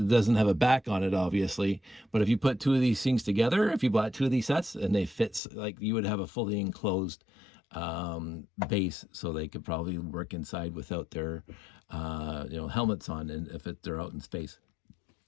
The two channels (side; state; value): right; drops out; at 5.4 s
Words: doesn't have a back on it, obviously, but if you put two of these things together, if you bought two of these sets and they fit, like, you would have a fully enclosed base, so they could probably work inside without their helmets on, and if they're out in space.